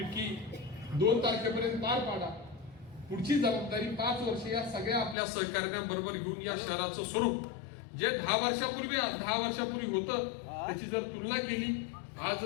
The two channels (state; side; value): drops out; right; at 5.2 s